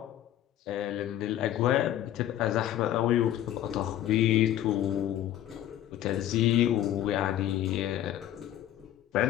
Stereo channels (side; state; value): right; quieter; 12.2 dB